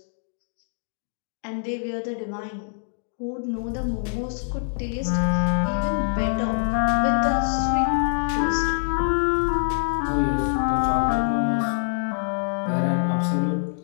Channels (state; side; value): silent; right; digital silence